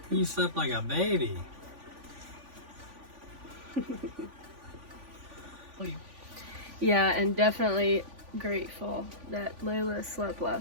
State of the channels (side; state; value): left; late; 3.5 ms